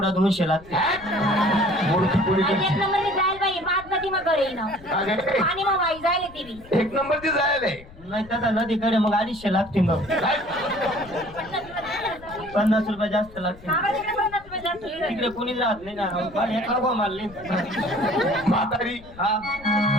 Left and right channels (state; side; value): noise; left; rumble, 20 dB below the sound